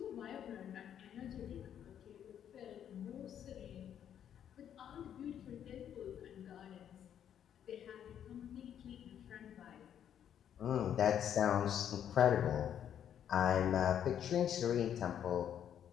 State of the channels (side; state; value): right; quieter; 9.5 dB